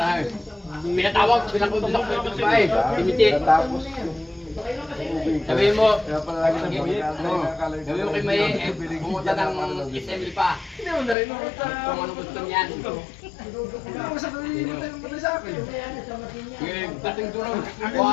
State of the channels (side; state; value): right; drops out; at 11.2 s